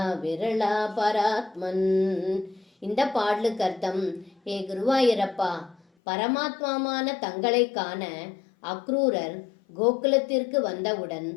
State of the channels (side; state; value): right; drops out; at 5.8 s